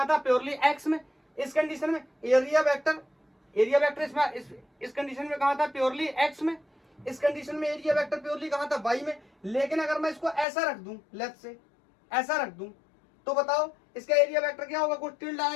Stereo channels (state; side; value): drops out; right; at 10.5 s